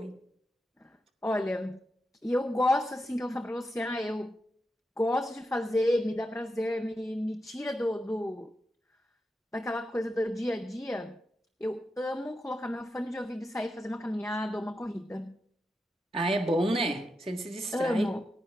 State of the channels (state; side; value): normal; both; correlation 0.87